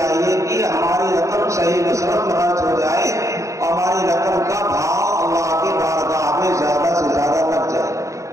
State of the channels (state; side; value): late; left; 0.15 ms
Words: کہ ہماری رقم صحیح مصرف میں خرچ ہو جائے اور ہماری رقم کا بھاؤ اللہ کی بارگاہ میں زیادہ سے زیادہ لگ جائے.